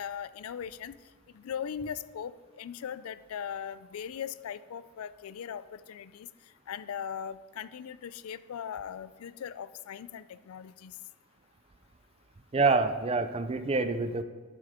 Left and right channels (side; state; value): both; normal; correlation 0.00